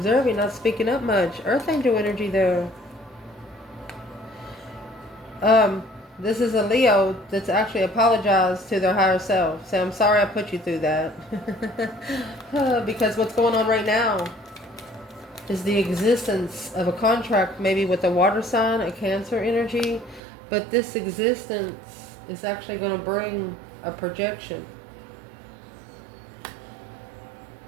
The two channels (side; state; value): left; drops out; at 20.2 s